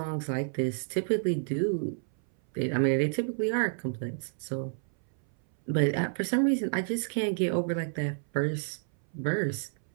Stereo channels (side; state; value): left; silent; 58 dB below the other